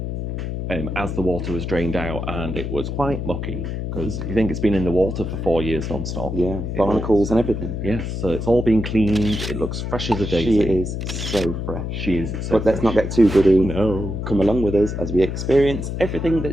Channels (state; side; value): noise; left; hum, 4 dB below the sound